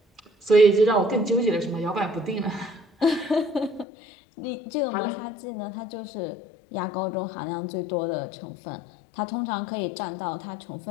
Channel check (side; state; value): right; drops out; at 3.9 s